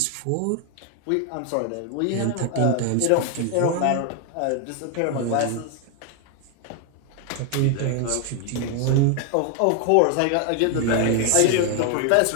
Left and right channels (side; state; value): both; different; correlation 0.01